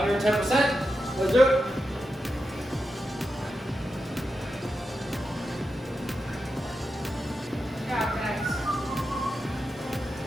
Let's do it. Good job, guys.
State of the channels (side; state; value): both; normal; correlation 0.89